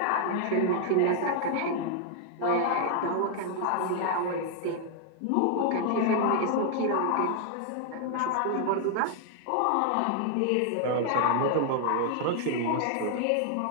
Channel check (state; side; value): different; both; correlation 0.00